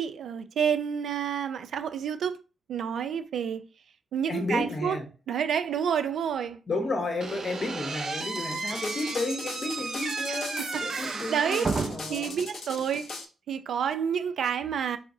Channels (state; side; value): quieter; left; 4.0 dB